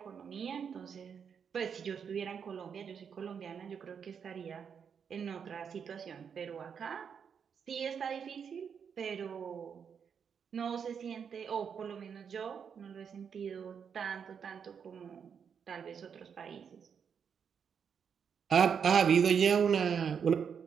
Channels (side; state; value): left; quieter; 7.0 dB